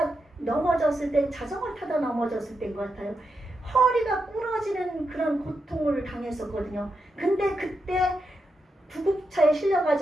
넘어졌을 때 자전거를 타다 넘어졌을 때인 것 같아요. 허리가 부러지는 그런 고통을 당했었거든요. 근데 그때 구급차에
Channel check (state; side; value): normal; both; correlation 0.85